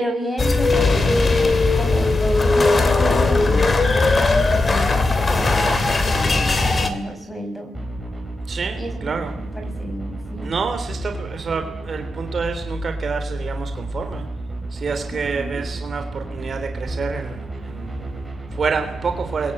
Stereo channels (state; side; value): normal; both; correlation 0.88